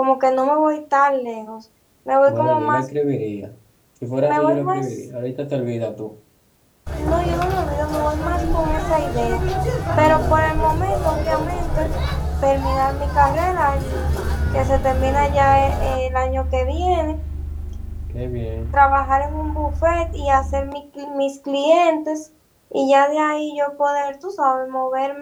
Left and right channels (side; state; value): both; identical; correlation 1.00